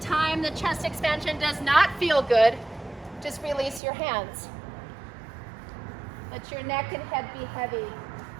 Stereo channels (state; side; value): drops out; left; at 3.8 s